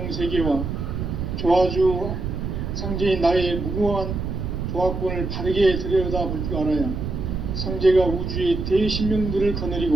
세계와 조화주 상제인 나의 무궁한 조화권을 바르게 들여다볼 줄 알아야 상제가 우주의 대신명들을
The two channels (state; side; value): noise; right; rumble, 4 dB below the sound